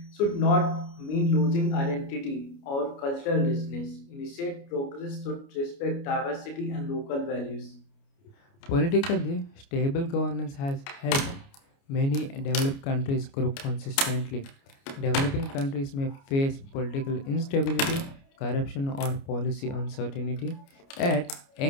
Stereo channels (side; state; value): right; late; 29 ms